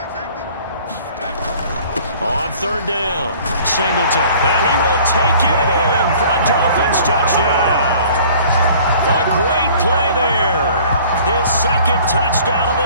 On 3rd down, Singleton, and he will take it in for a Dolphins touchdown. A great play there. His 2nd touchdown of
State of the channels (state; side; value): inverted; both; correlation -0.51